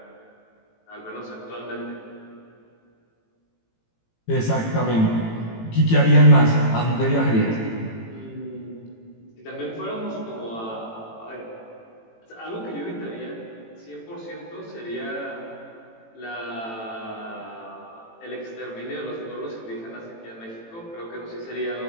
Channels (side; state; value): right; late; 18 ms